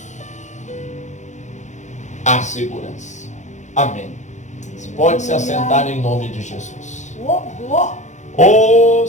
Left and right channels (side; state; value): right; late; 0.35 ms